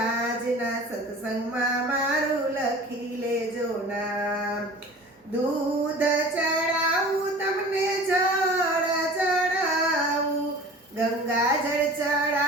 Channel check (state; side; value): normal; both; correlation 0.42